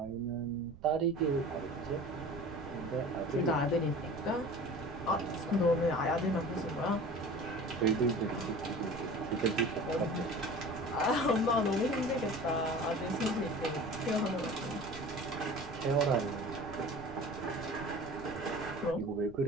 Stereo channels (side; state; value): right; noise; rumble, 17 dB below the sound